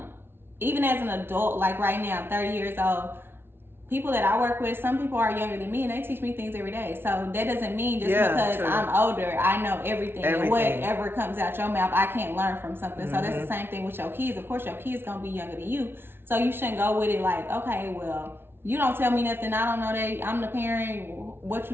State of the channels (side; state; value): left; late; 0.11 ms